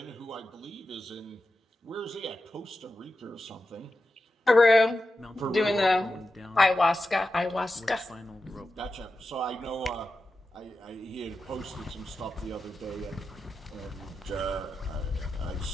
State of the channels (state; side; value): normal; both; correlation 0.91